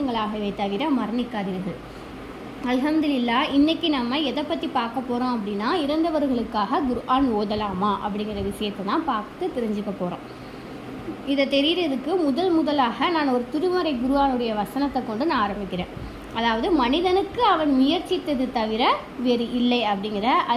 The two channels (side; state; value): both; identical; correlation 1.00